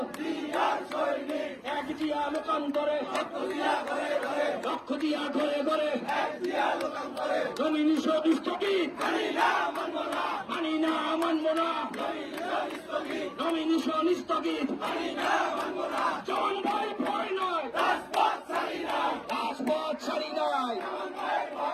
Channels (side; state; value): both; identical; correlation 1.00